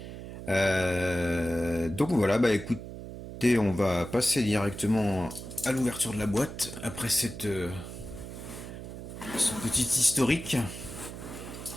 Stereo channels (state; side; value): noise; right; hum, 10 dB below the sound